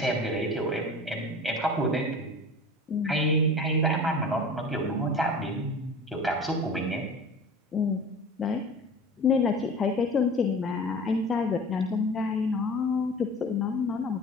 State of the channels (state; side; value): normal; both; correlation 0.39